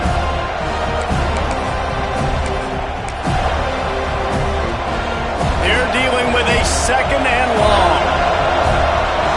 They're dealing with a 2nd and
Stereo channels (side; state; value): both; identical; correlation 1.00